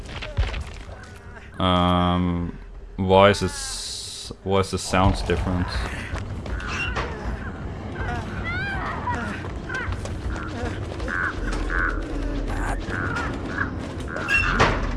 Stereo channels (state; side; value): identical; both; correlation 1.00